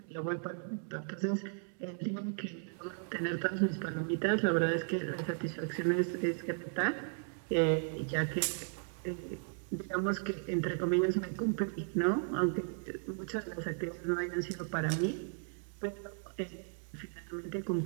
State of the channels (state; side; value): silent; left; 54 dB below the other